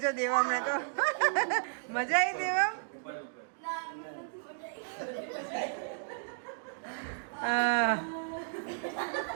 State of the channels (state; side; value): silent; left; digital silence